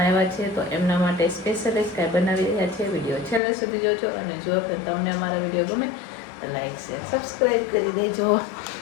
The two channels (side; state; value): right; drops out; at 3.4 s